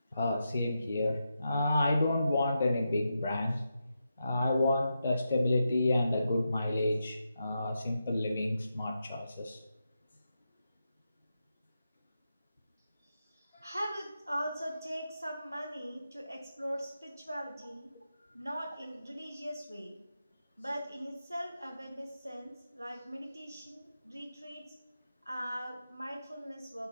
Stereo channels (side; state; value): both; inverted; correlation -0.87